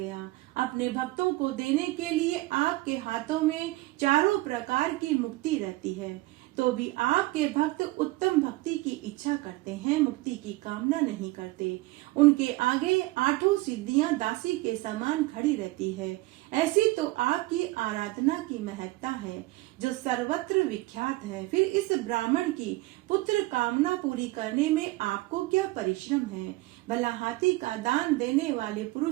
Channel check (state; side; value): quieter; left; 20.0 dB